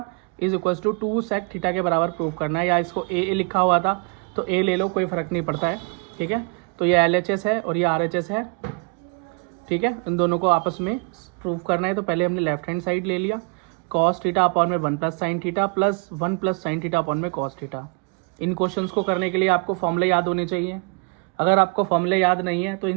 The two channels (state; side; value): quieter; left; 36.2 dB